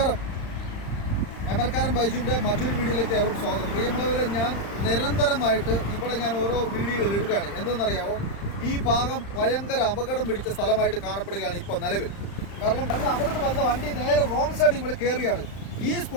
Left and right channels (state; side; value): late; right; 35 ms